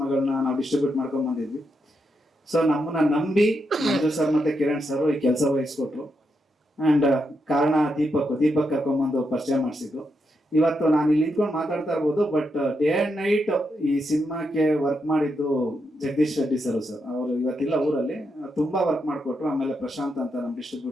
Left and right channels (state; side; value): normal; both; correlation 0.83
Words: ನಾವು ಡಿಸ್ಟ್ರಿಬ್ಯೂಟ್ ಮಾಡ್ಕೊಂಡ್ ಬಂದಿದ್ವಿ. ಸೊ ನಮ್ಮನ್ನ ನಂಬಿ ಮಂಜು ಸರ್ ಮತ್ತೆ ಕಿರಣ್ ಸರ್ ಈ ಕೆಲಸ ವಹಿಸ್ಕೊಟ್ರು. ಅಂಡ್ ಕಾರಣ ದೀಪಕ್ ಕರ್ಕೊಂಡ್ಬಂದು ಪರಿಚಯ ಮಾಡಿಸಿದ್ರು. ಇವತ್ತು ನಾನು ಇಲ್ಲಿ ನಿಂತ್ಕೊಂಡು ಮಾತಾಡ್ತಾ ಇರ್ಬೋದು, ಬಟ್ ಡೇ ಅಂಡ್ ನೈಟ್ ಈ ಸಿನಿಮಾಕ್ಕೆ ವರ್ಕ್ ಮಾಡಿದ್ದು ಜಗದೀಶ್ ರೆಡ್ಡಿ ಸರ್. ಅವರು ಇವತ್ತಿಲ್ಲ ಊರಲ್ಲಿ, ತುಂಬಾ ವರ್ಕ್ ಮಾಡಿಕೊಟ್ರು. ಆಮೇಲೆ ಪ್ರಶಾಂತ್ ಅಂತ ನಮ್ಮ